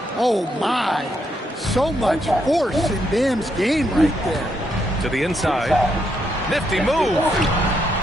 Oh, my. So much force in Bam's game right there. To the inside. Nifty move.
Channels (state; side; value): normal; both; correlation 0.77